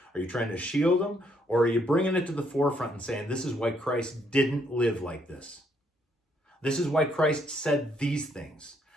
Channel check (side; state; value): both; normal; correlation 0.71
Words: Are you trying to shield them? Or are you bringing it to the forefront and saying, this is why Christ didn't live like this? This is why Christ said these things.